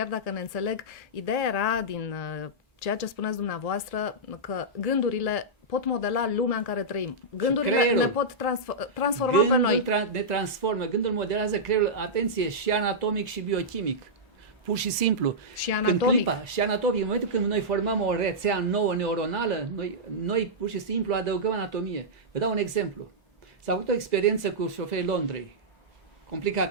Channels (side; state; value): both; normal; correlation -0.11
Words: dacă ne înțeleg, ideea era din ceea ce spuneți dumneavoastră, că gândurile pot modela lumea în care trăim. Gândurile ne pot transforma pe noi. Ne transformă. Gândul modelează creierul, atenție, și anatomic și biochimic. Pur și simplu. Și anatomic. Și anatomic. În momentul când noi formăm o rețea nouă neuronală, noi pur și simplu adăugăm anatomie. Vă dau un exemplu. S-a făcut o experiență cu șoferii Londrei,